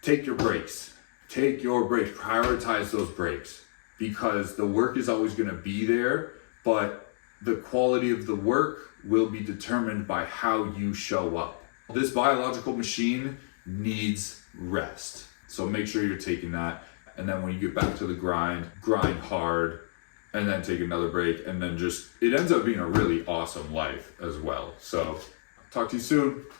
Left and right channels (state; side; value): silent; right; digital silence